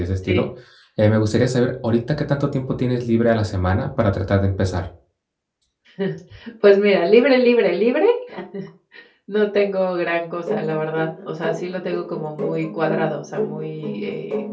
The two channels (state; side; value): identical; both; correlation 1.00